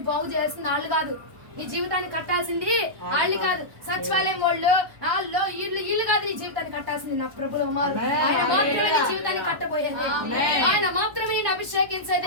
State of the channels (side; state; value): left; late; 1.1 ms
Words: బాగు చేయాల్సింది వాళ్ళు కాదు, నీ జీవితాన్ని కట్టాల్సింది వాళ్ళు కాదు. సచివాలయం వాళ్ళు ఇల్లు కాదు నీ జీవితాన్ని కట్టాల్సింది నా ప్రభుల కుమారు. ఆయన మాత్రమే నీ జీవితాన్ని కట్టబోయేది, ఆయన మాత్రమే